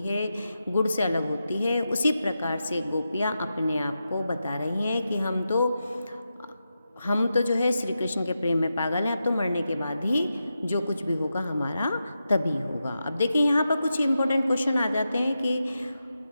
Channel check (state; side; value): inverted; both; correlation -0.89